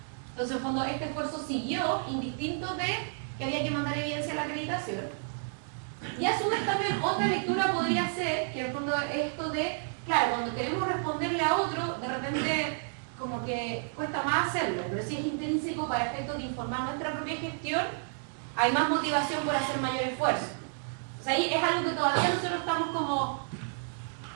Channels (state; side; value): silent; left; digital silence